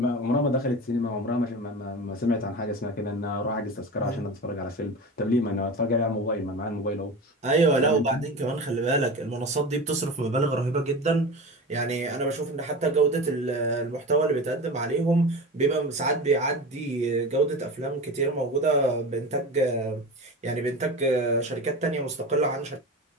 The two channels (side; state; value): both; normal; correlation 0.29